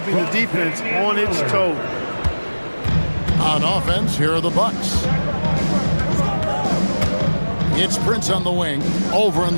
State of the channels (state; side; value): inverted; both; correlation -1.00